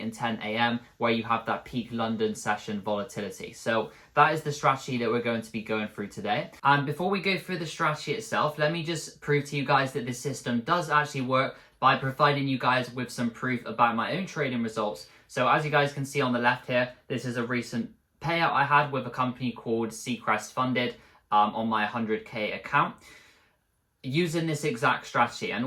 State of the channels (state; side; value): identical; both; correlation 1.00